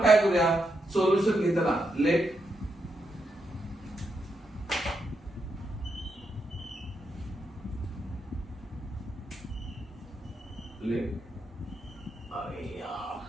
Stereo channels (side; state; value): both; normal; correlation 0.82